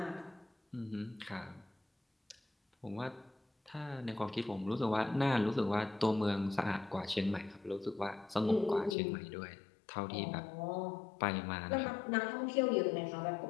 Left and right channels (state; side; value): drops out; right; at 9.0 s